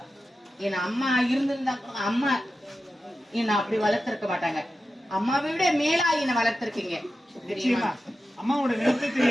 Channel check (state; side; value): normal; both; correlation 0.92